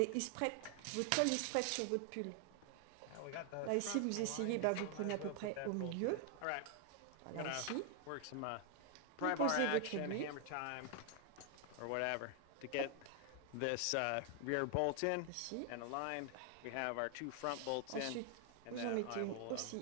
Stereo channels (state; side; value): different; both; correlation 0.00